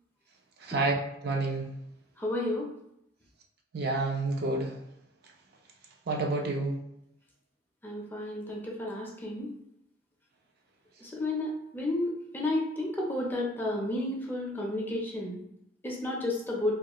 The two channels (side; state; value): both; normal; correlation 0.48